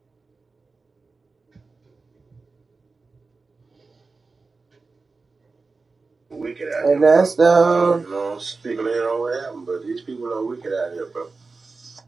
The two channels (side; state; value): left; quieter; 4.0 dB